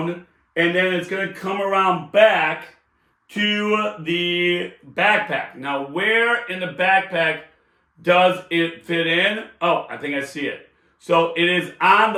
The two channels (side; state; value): both; identical; correlation 1.00